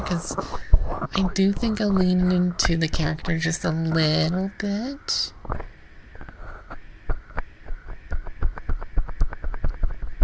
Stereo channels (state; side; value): identical; both; correlation 1.00